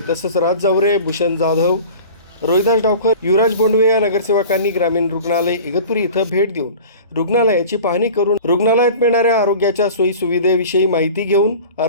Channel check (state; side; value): inverted; both; correlation -0.40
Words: तसंच राज जावरे, भूषण जाधव, रोहिदास डावकर, युवराज बोंडवे या नगरसेवकांनी ग्रामीण रुग्णालय इगतपुरी इथं भेट देऊन रुग्णालयाची पाहणी करून रुग्णालयात मिळणाऱ्या आरोग्याच्या सोयी सुविधेविषयी माहिती घेऊन